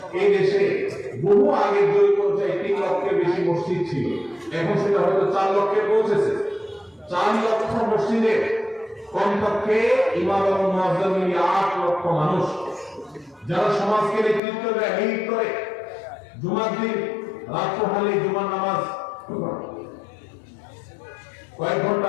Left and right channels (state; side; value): drops out; right; at 14.4 s